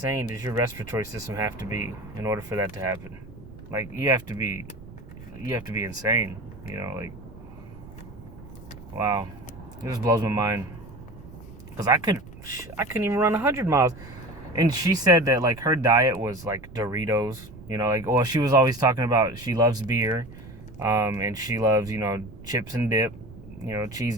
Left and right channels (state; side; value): noise; right; rumble, 17 dB below the sound